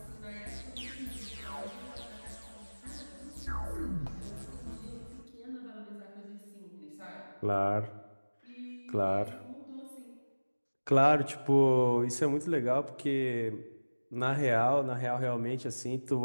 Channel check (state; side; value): inverted; both; correlation -1.00